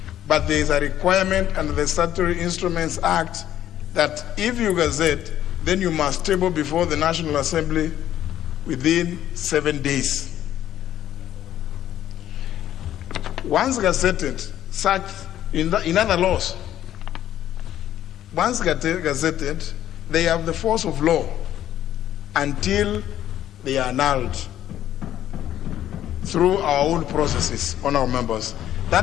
But there is a requirement under the Statutory Instruments Act that if you gazette, then you must table before the National Assembly within 7 days. Once gazetted, such in other laws, once gazetted, they have the force of law until they are annulled through our own processes on our members.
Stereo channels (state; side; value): quieter; right; 11.8 dB